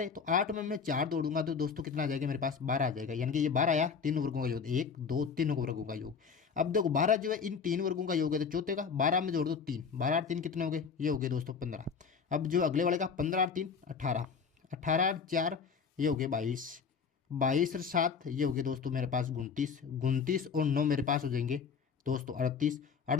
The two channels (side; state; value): right; quieter; 5.9 dB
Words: है, तो 8 में मैं 4 जोड़ूंगा तो दोस्तों कितना आ जाएगा मेरे पास, 12 आ जाएगा। यानी कि ये 12 आया, तीनों वर्गों का योग, 1 2 तीनों वर्गों का योग। अब देखो 12 जो है इन 3 वर्गों का योग है, तो चौथे का 12 में जोड़ दो 3, 12 और 3 कितने हो गए, ये हो गए दोस्तों 15। अब जो अगले वाले का 15 और 3 18, 18 और 4 ये हो गए 22, 22 और 7 ये हो गए दोस्तों मेरे पास 29, 29 और 9 मेरे पास हो जाएंगे दोस्तों 38,